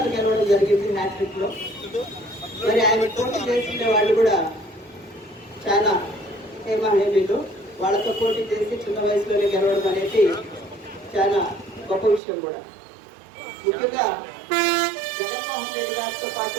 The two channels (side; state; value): left; drops out; at 12.2 s